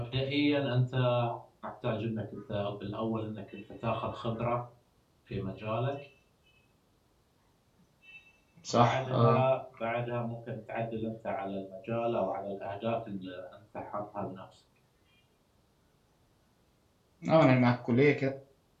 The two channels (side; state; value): both; identical; correlation 1.00